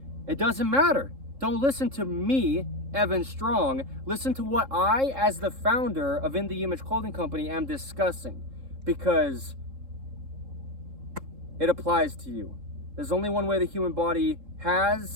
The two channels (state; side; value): late; left; 3.7 ms